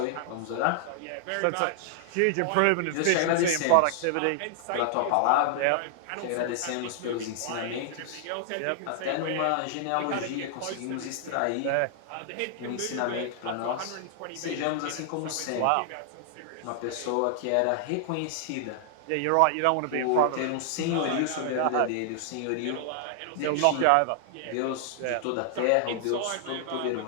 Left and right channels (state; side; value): different; both; correlation -0.01